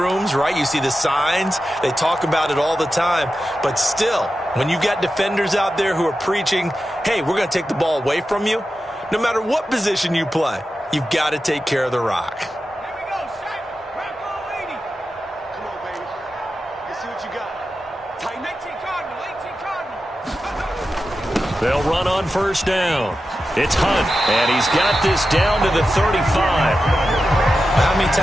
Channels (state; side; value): normal; both; correlation 0.92